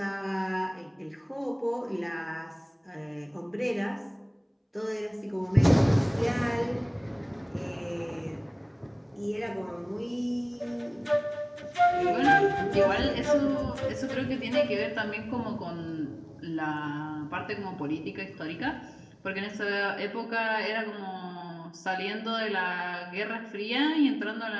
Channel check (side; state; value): both; identical; correlation 1.00